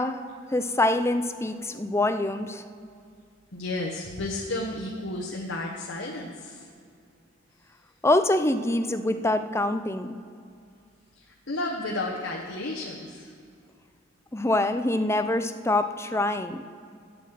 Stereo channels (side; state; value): both; normal; correlation 0.63